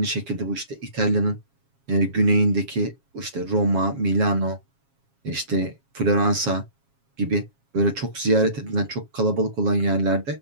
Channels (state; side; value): late; left; 7.3 ms